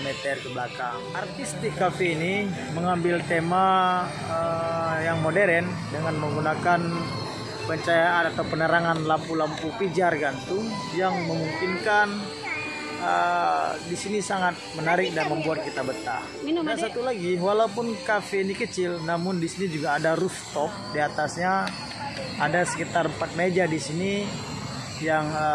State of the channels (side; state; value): both; identical; correlation 1.00